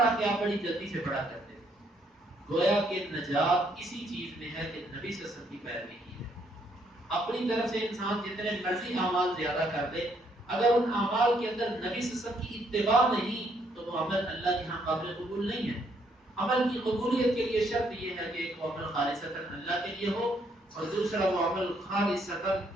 کہ آپ بڑی جلدی سے پڑھا کرتے تھے۔ گویا کہ نجات اسی چیز میں ہے کہ نبی صلی اللہ علیہ وسلم کی پیروی کی ہے۔ اپنی طرف سے انسان جتنے مرضی اعمال زیادہ کر دے، اگر ان اعمال کے اندر نبی صلی اللہ علیہ وسلم کی اتباع نہیں تو وہ عمل اللہ کے ہاں قابل قبول نہیں ہے۔ عمل کی قبولیت کے لیے شرط یہ ہے کہ ایک وہ عمل خالصتاً اللہ کے لیے ہو اور دوسرا وہ عمل خالصتاً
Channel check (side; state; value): both; normal; correlation 0.70